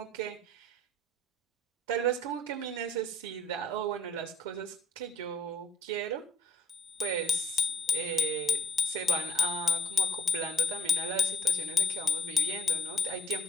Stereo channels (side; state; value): both; normal; correlation 0.63